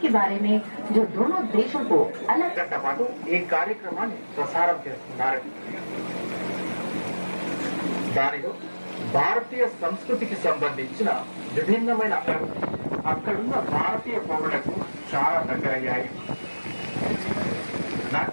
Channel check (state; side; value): inverted; both; correlation -1.00